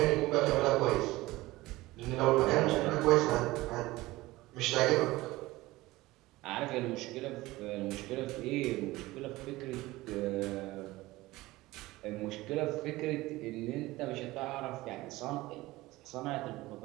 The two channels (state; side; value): quieter; left; 19.0 dB